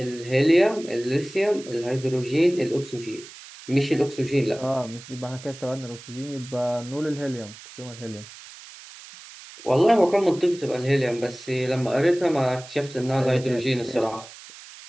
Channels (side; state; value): right; noise; hiss, 17 dB below the sound